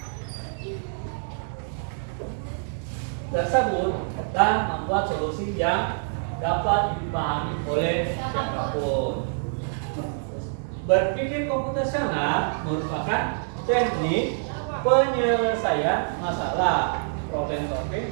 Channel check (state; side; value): silent; left; digital silence